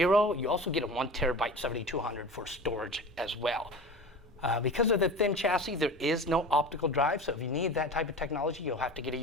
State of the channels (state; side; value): normal; both; correlation 0.34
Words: You also get a 1 terabyte 7200 for storage as well. Because of the thin chassis, there is no optical drive, so if you need that type of technology, you'll have to get a